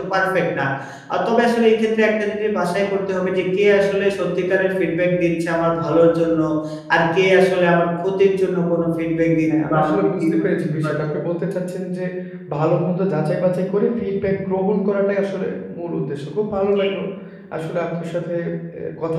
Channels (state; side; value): identical; both; correlation 1.00